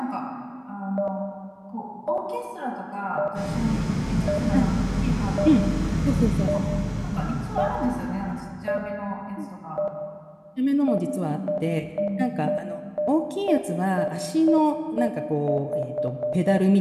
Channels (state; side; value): identical; both; correlation 1.00